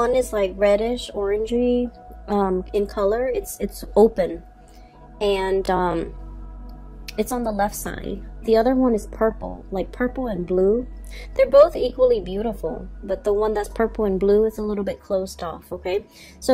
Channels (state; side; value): identical; both; correlation 1.00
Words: is like reddish, orangey in color. It's open, and it's on the left side. The other one is purple, like purple and blue. They're both equally beautiful, but the one that's purple and blue is a little bit closed off, okay?